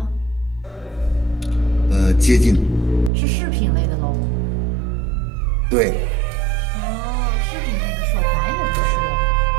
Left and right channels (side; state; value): left; drops out; at 3.1 s